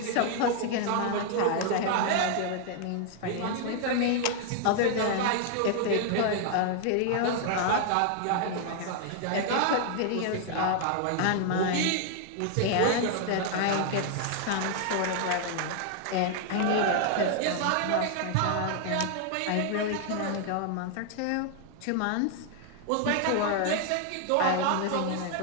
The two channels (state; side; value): different; both; correlation 0.00